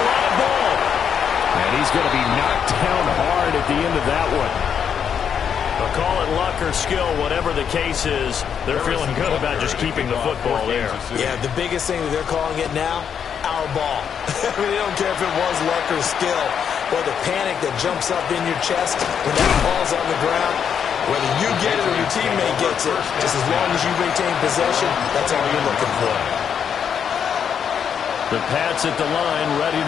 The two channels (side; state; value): right; quieter; 7.7 dB